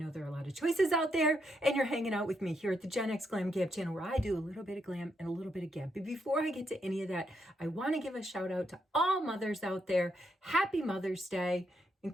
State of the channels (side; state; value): both; normal; correlation 0.78